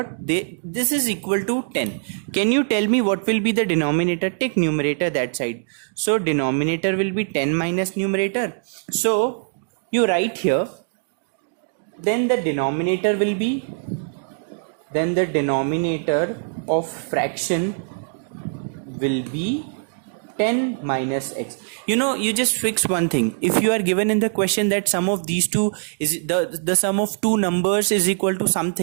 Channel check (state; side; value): silent; left; digital silence